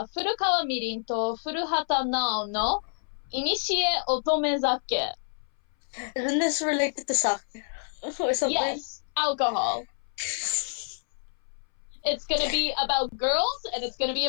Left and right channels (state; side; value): silent; right; 59 dB below the other